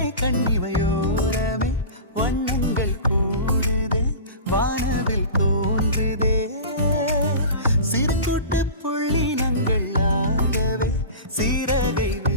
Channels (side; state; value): both; inverted; correlation -0.33